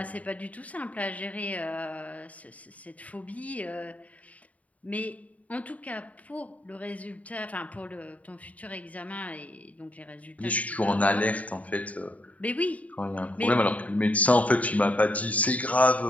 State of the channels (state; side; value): late; right; 0.069 ms